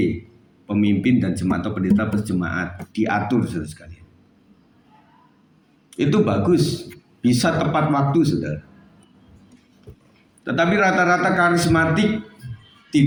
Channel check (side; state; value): both; identical; correlation 1.00